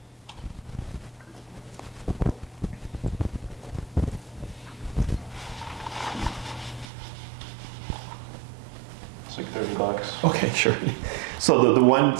It's like $30. Okay, sure. So the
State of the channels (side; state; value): left; drops out; at 6.9 s